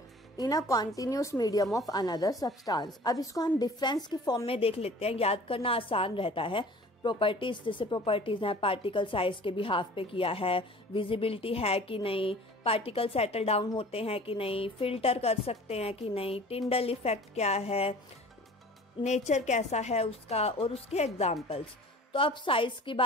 in a continuous medium of another substance. अब इसको हम डिफरेंस की फॉर्म में देख लेते हैं, याद करना आसान रहता है। प्रॉपर्टीज, जैसे प्रॉपर्टीज हैं, पार्टिकल साइज के बिहाफ पे किया है, विजिबिलिटी है कि नहीं, पार्टिकल सेटल डाउन होते हैं कि नहीं, फिल्टर कर सकते हैं कि नहीं, टिंडल इफेक्ट क्या है, नेचर कैसा है उसका, और उसके एग्जाम्पल्स। तो अब साइज की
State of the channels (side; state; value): both; normal; correlation 0.45